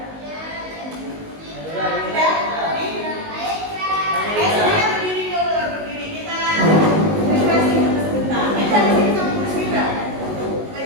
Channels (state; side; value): late; left; 19 ms